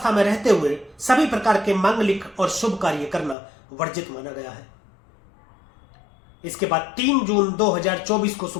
में रहते हुए सभी प्रकार के मांगलिक और शुभ कार्य करना वर्जित माना गया है। इसके बाद 3 जून 2024 को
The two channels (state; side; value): drops out; right; at 3.4 s